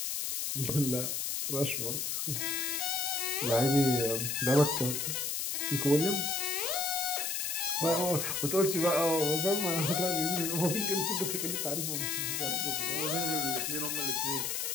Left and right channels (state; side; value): noise; left; hiss, 1 dB below the sound